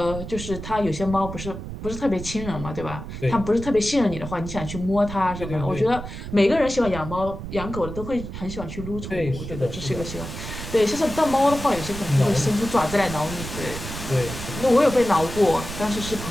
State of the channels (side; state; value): right; noise; rumble, 9 dB below the sound